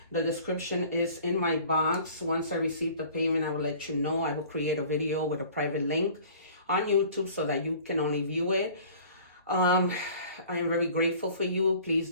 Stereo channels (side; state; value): both; inverted; correlation -0.48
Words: the description is in my box. Once I receive the payment, I will let you know. I will create a video with a private link on YouTube so that you can only view it. I am very grateful for you. Please